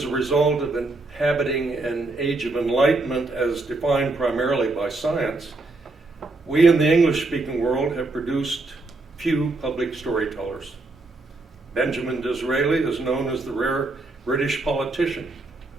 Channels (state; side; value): quieter; left; 3.2 dB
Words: a result of inhabiting an age of enlightenment as defined primarily by science, we in the English-speaking world have produced few public storytellers. Benjamin Disraeli is known as the rare British politician